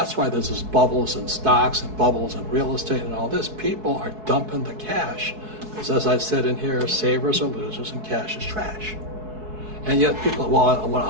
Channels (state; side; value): late; left; 4.6 ms